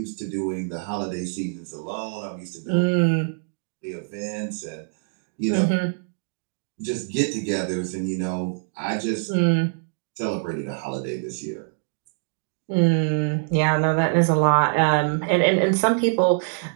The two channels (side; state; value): left; silent; digital silence